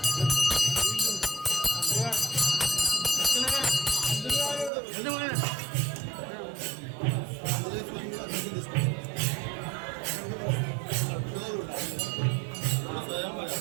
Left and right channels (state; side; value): drops out; left; at 4.7 s